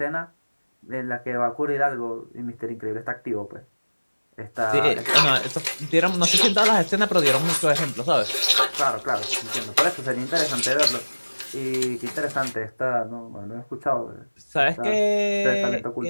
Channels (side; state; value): both; inverted; correlation -1.00